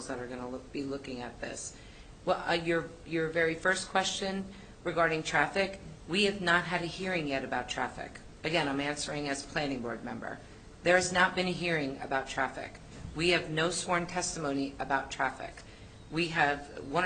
that are going to be looking at this. Well, your very first question regarding traffic, we have not had a hearing yet about traffic. Again, I'm answering as planning board member. There has not been a hearing about traffic. We have no sworn testimony about traffic. We have 1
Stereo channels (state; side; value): identical; both; correlation 1.00